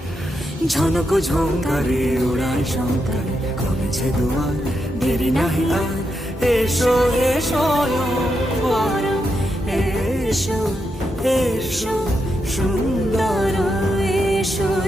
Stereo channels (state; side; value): normal; both; correlation 0.84